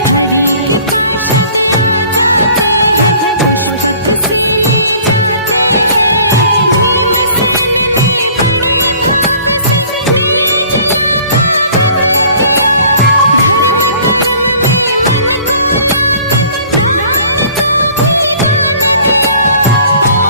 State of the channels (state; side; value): inverted; both; correlation -0.51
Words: हरि के पार्षद आ जाते हैं पुष्पक से ले जाते हैं। भीमसेन ने बड़े भाव से निर्जला का व्रत किया। धर्म कर्म में मन को लाकर ब्राह्मण को भी दान दिया।